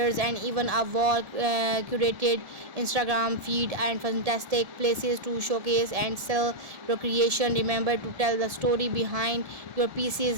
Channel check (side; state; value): left; late; 1.7 ms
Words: and even a wall curated Instagram feed and fantastic places to showcase and sell your creation. Remember to tell the story behind your